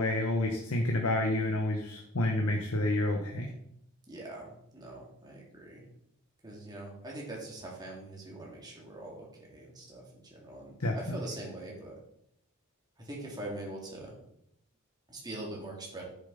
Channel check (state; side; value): normal; both; correlation 0.54